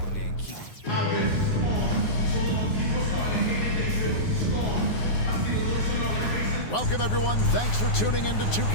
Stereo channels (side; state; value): right; late; 9.5 ms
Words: keep. I've been storm. So long people starting hating, they feel storm. I see the looks on their faces. Welcome, everyone. Thanks for tuning into